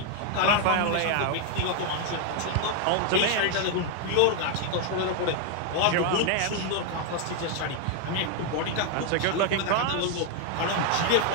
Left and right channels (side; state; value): both; different; correlation 0.01